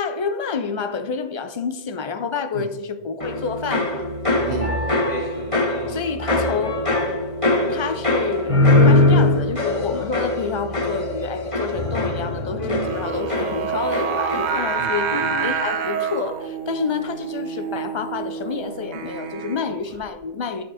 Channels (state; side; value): late; left; 1.3 ms